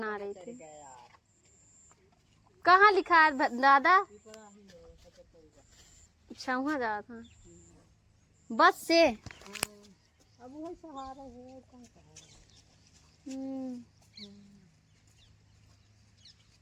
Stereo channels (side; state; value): both; identical; correlation 1.00